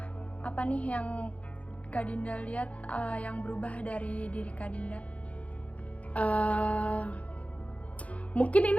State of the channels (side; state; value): right; late; 0.066 ms